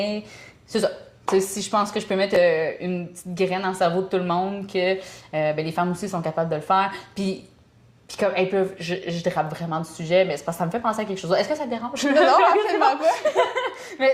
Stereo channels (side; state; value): both; identical; correlation 1.00